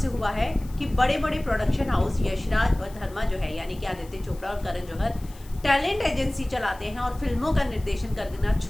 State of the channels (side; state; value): left; noise; hiss, 23 dB below the sound